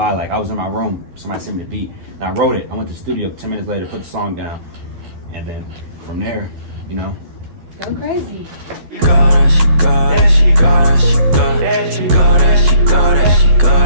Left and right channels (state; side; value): late; left; 12 ms